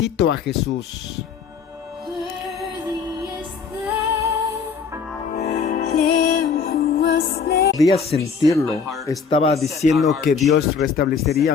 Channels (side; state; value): right; quieter; 5.8 dB